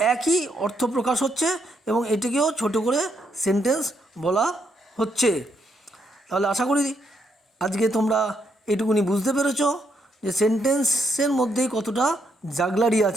একই অর্থ প্রকাশ হচ্ছে এবং এটিকেও ছোটো করে সেন্টেন্স বলা হচ্ছে। তাহলে আশা করি আজকে তোমরা এটুকুনি বুঝতে পেরেছো যে সেন্টেন্সের মধ্যেই কতটা জাগলারি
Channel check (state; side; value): normal; both; correlation 0.76